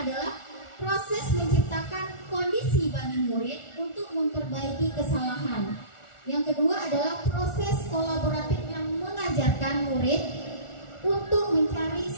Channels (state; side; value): late; right; 1.4 ms